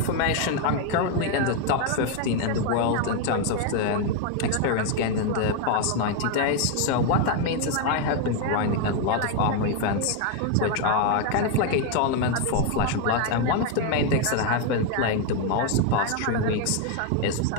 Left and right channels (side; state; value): both; different; correlation 0.01